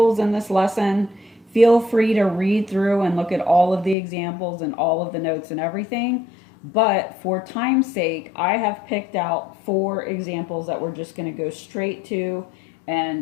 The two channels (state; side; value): drops out; right; at 4.0 s